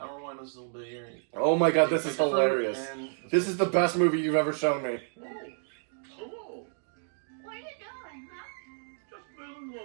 I'll rewind this a little bit here. Oh my god, this is Take the fruit hilarious. and- This is the best movie you've ever shown me. Oh, hello. What are you doing, huh? Just feeling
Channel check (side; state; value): left; silent; digital silence